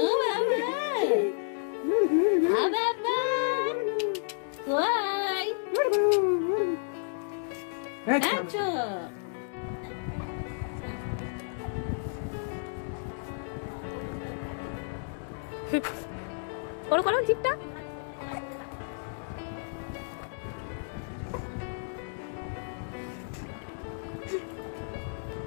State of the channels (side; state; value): right; silent; digital silence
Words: Baba. Why? Acho. করো করো জিপটা